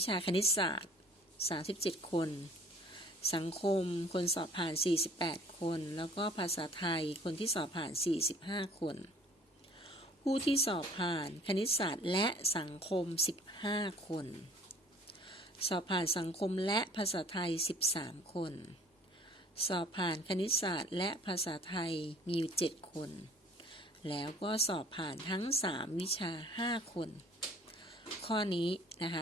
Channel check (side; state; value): both; normal; correlation 0.52